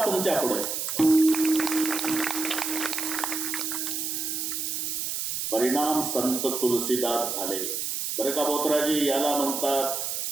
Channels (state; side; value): noise; right; hiss, 2 dB below the sound